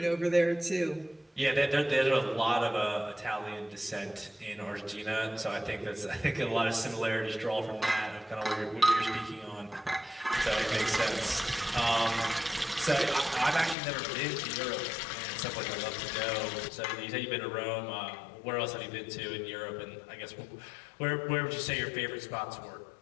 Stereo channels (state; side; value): drops out; right; at 13.8 s